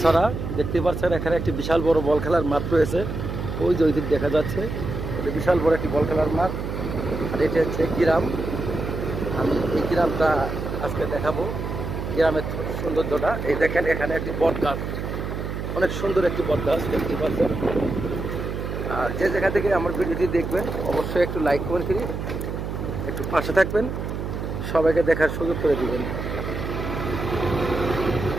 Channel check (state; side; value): noise; right; hum, 5 dB below the sound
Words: দেখতে পাচ্ছেন, এখানে একটি বিশাল বড় বল খেলার মাঠ রয়েছে। ওই যে ওই দিক দেখা যাচ্ছে, এটা বিশাল বড় একটি বল খেলার মাঠ। আর এটা হচ্ছে গ্রাম। আমি এই গ্রামটা আজকে দেখাবো, গ্রামের সৌন্দর্যটা। এই দেখেন, এখানে একটি বট গাছ, অনেক সুন্দর একটি বট গাছ দেখতে পাচ্ছেন। আর যে জায়গা থেকে আমার ভিডিওটি দেখবেন অবশ্যই একটু লাইক কমেন্ট করি, একটু পাশে থাকবেন, সবাইকে দেখার সুযোগ করে দিবেন।